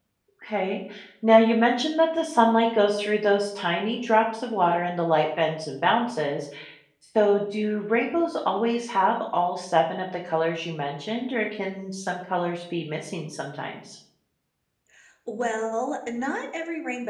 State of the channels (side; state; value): both; identical; correlation 1.00